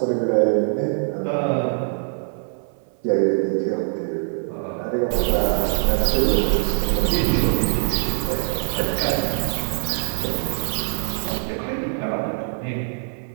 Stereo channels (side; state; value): left; silent; 59 dB below the other